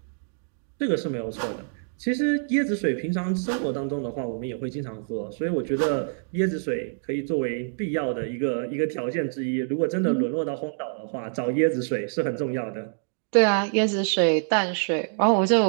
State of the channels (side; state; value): left; silent; digital silence